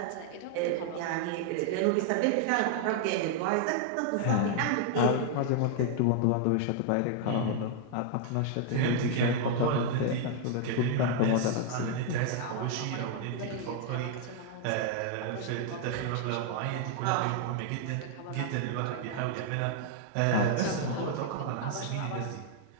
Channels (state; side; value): different; both; correlation 0.00